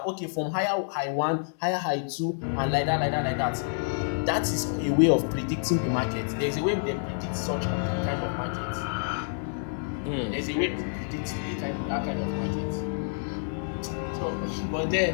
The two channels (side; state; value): right; silent; digital silence